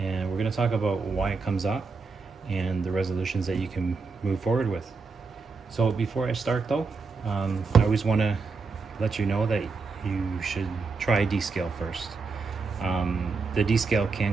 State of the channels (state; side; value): quieter; left; 4.5 dB